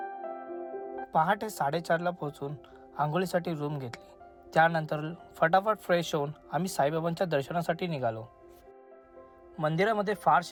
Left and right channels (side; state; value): both; identical; correlation 1.00